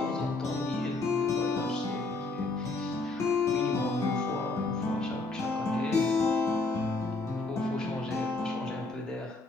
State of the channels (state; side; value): quieter; right; 3.4 dB